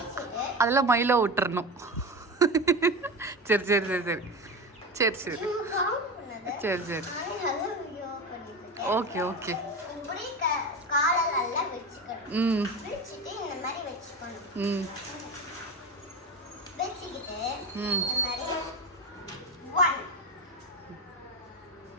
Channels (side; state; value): both; normal; correlation 0.24